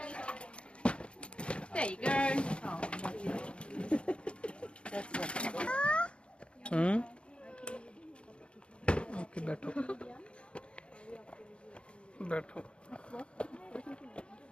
There you go. Okay बैठो बैठो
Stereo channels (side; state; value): right; late; 0.057 ms